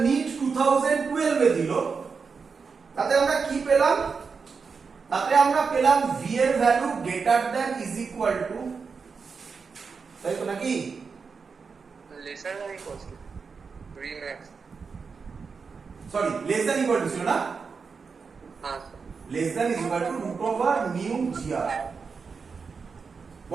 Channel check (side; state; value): left; quieter; 5.3 dB